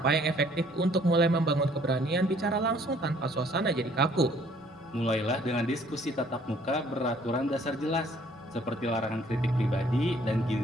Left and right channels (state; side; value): normal; both; correlation 0.60